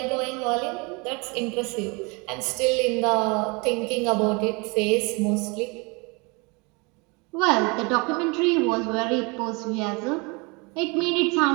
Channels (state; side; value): quieter; left; 28.8 dB